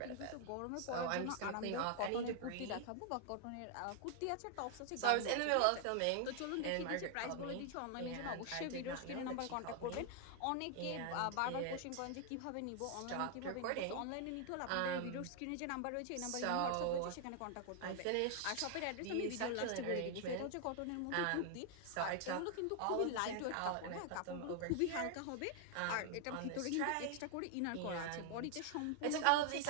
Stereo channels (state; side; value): different; both; correlation 0.00